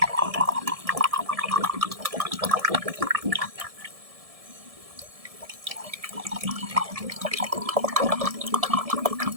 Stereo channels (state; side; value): late; left; 1.7 ms